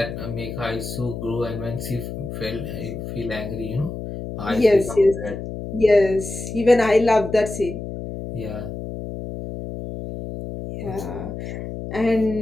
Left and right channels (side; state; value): left; noise; hum, 8 dB below the sound